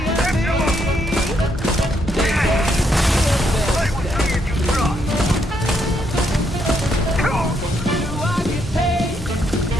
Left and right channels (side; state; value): both; normal; correlation 0.75